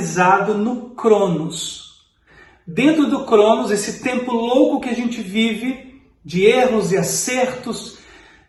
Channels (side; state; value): both; identical; correlation 1.00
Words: no Cronos. Dentro do Cronos, esse tempo louco que a gente vive, de erros e acertos,